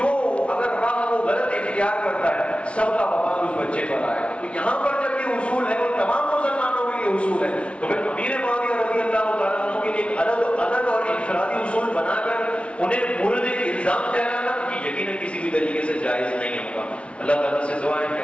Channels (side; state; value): right; late; 0.061 ms